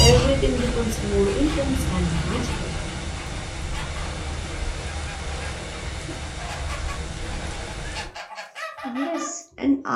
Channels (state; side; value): identical; both; correlation 1.00